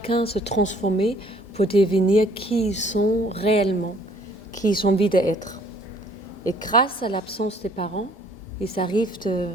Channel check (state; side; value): normal; both; correlation 0.59